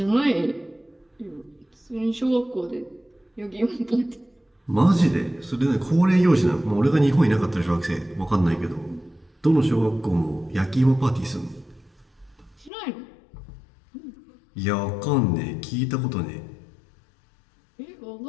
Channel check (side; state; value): right; drops out; at 12.7 s